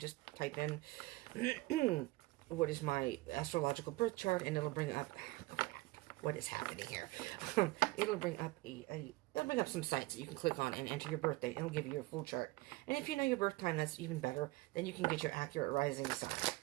type in what is my astrological birth chart, and it'll bring up what is happening here. It'll bring up it'll bring up some sites that you can click on and enter your birth date. It'll give you your full chart. And if you know your birth time, that's even better. Then you can get your accurate rising sign.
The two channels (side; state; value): left; quieter; 20.6 dB